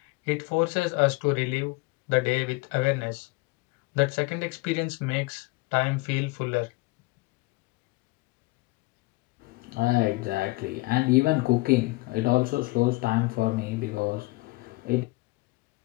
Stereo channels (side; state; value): right; quieter; 23.2 dB